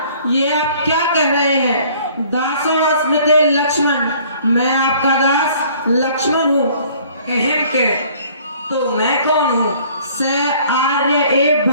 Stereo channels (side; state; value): both; inverted; correlation -0.55